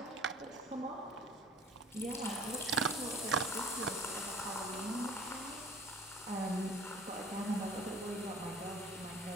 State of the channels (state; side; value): normal; both; correlation 0.48